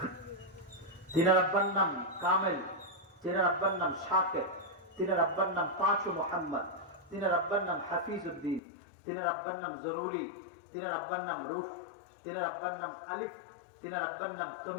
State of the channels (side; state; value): right; drops out; at 8.6 s